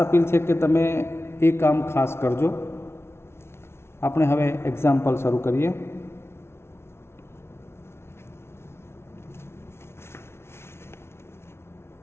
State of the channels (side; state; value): right; late; 0.12 ms